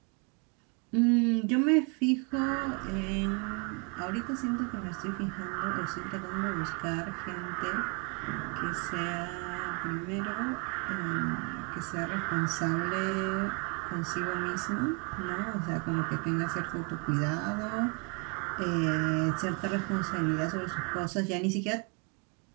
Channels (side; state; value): left; quieter; 33.3 dB